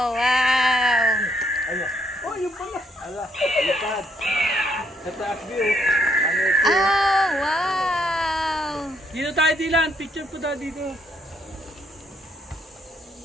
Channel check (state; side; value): normal; both; correlation 0.71